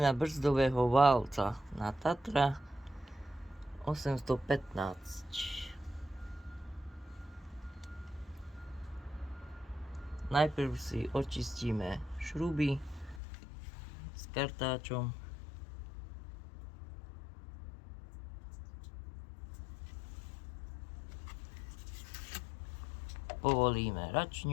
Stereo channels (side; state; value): right; drops out; at 13.2 s